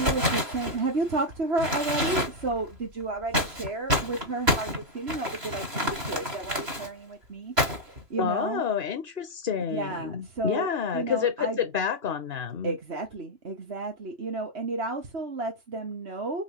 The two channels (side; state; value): left; late; 3.0 ms